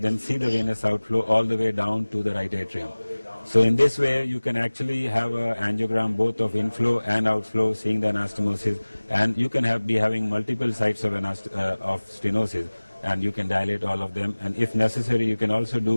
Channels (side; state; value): both; inverted; correlation -1.00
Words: see the venous outflow all the way down to the right atrium. So in this way, you can actually have an angiogram both of inflow and outflow, seeing the anastomosis, and you can be having multiple sites of stenosis, and you can dilate all of them. And if necessary, you can also